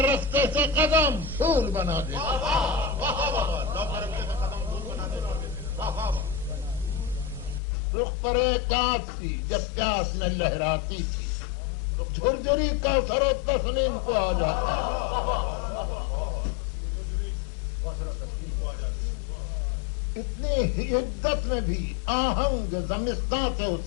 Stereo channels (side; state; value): right; drops out; at 7.6 s